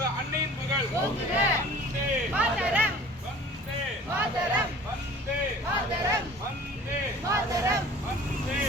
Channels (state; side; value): normal; both; correlation 0.46